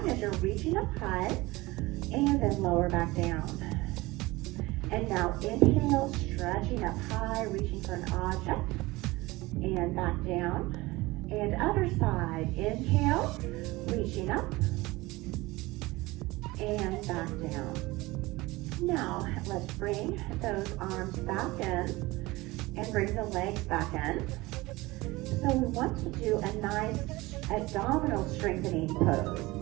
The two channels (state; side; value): quieter; left; 20.9 dB